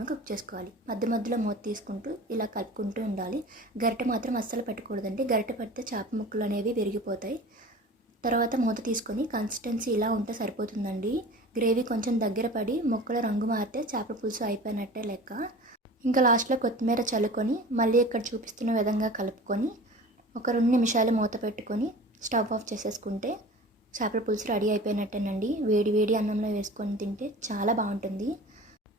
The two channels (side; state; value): both; normal; correlation 0.39